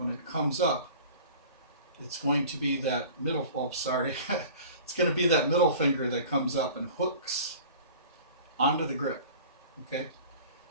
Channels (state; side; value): inverted; both; correlation -0.43